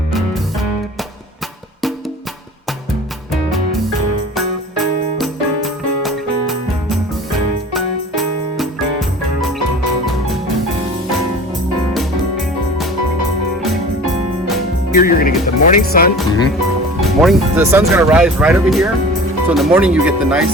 Here you're going to get the morning sun. The sun's going to rise right over here. So in the morning you get the nice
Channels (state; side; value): normal; both; correlation 0.41